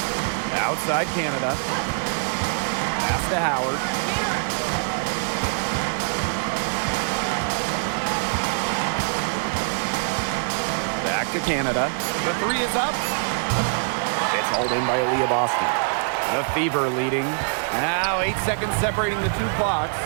Outside Canada. Pass to Howard. Back to Canada. The 3 is up. It's hauled in by Aaliyah Boston. The Fever leading. Now 8 seconds separating the 2 clocks.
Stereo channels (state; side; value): silent; left; 63 dB below the other